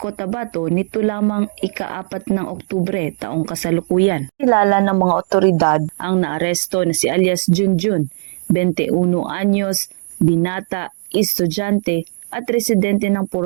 nito lamang ika-4 ng Oktubre taong kasalukuyan. Kilala ng mga otoridad ang naaresto na si alias Junjun, 21 anyos, binata, estudyante at residente ng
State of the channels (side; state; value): left; silent; digital silence